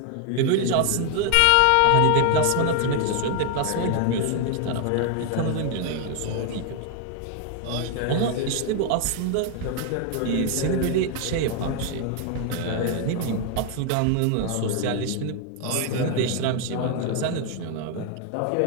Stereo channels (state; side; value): different; both; correlation 0.00